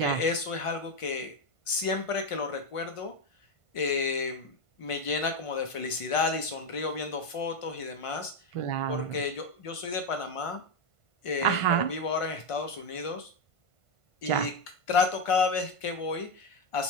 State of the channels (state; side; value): late; right; 1.5 ms